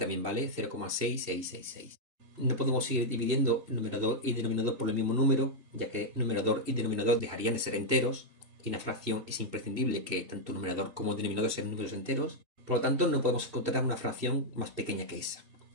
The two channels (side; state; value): left; late; 2.7 ms